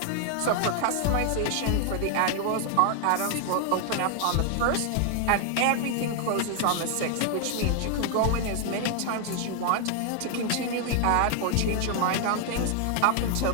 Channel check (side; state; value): both; different; correlation 0.00